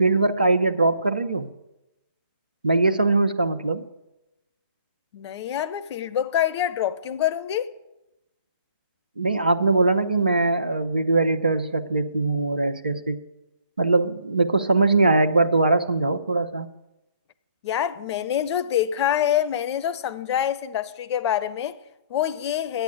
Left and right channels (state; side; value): inverted; both; correlation -0.62